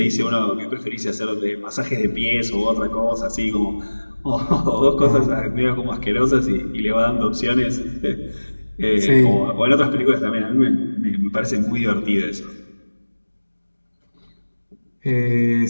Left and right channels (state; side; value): inverted; both; correlation -1.00